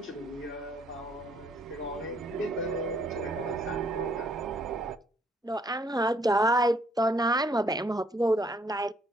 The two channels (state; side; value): normal; both; correlation 0.67